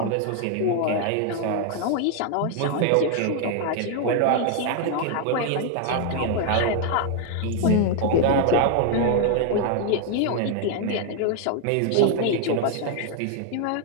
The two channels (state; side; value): different; both; correlation 0.00